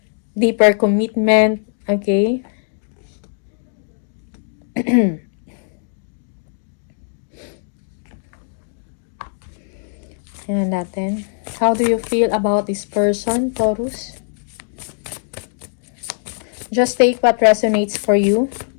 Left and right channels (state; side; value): silent; right; digital silence